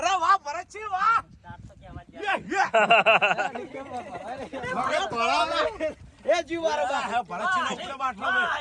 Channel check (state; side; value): identical; both; correlation 1.00